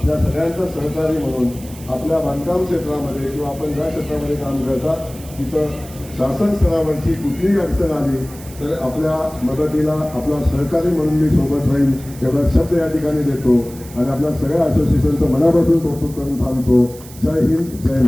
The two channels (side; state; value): right; noise; hiss, 19 dB below the sound